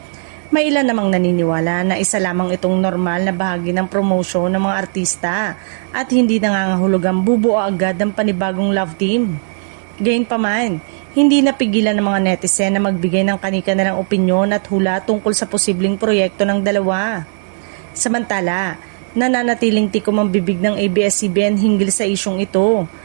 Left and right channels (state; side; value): silent; left; digital silence